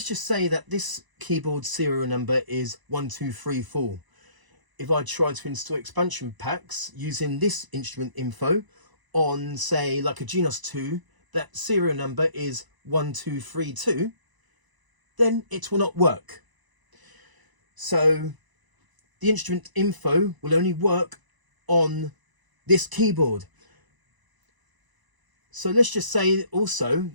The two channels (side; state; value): left; late; 1.0 ms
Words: just say that this keyboard serial number is 1234. If I try to install expansion packs using this instrument info on, say, like a Genos 2, that serial number is 1232, then it will not work. So the instrument info will only work on this keyboard. So let's just say also